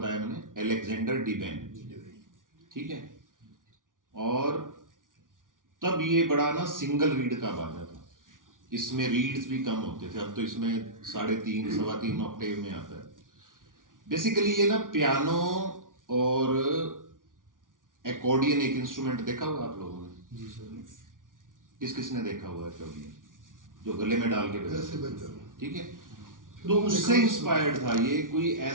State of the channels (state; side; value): late; left; 0.88 ms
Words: मैंने? अलेक्जेंडर डिवेन, ठीक है। और तब ये बड़ा ना सिंगल रीड का बाजा था, इसमें रीड्स भी कम होते थे। अब तो इसमें 3.5 सवा 3 ऑक्टेव में आता है। बेसिकली ये ना पियानो और एकॉर्डियन एक इंस्ट्रूमेंट देखा हुआ आप लोगों ने? जी सर। किस किसने देखा हुआ है एकॉर्डियन, जो गले में डाल के बजाते, ठीक है। तो उससे इंस्पायर्ड था ये। कोई